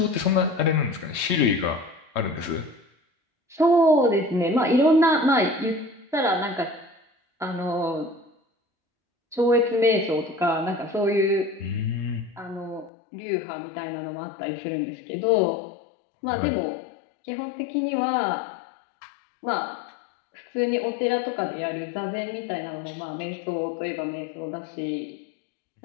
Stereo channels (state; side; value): drops out; right; at 12.9 s